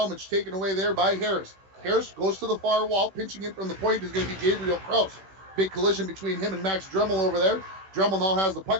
taken away there by Harris. Harris goes to the far wall. Pinching in from the point is going to be Gabriel Krause. Big collision between him and Max Dremel over there. Dremel now has the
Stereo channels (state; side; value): late; left; 16 ms